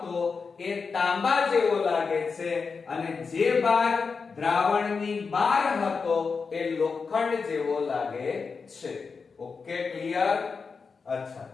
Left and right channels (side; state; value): right; quieter; 5.1 dB